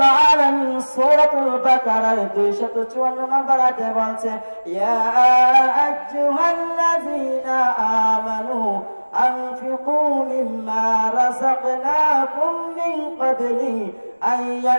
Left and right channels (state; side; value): inverted; both; correlation -1.00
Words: আলামিন সূরাতুল বাকারার 254 নম্বর আয়াতে বলছে ইয়া আইয়ুহাল্লাযীনা আমানু আনফিকু মিম্মা রাযাকনাকুম মিন ক্বাবলি আন